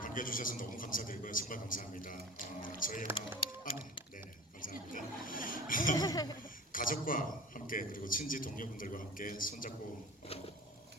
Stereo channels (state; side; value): normal; both; correlation 0.38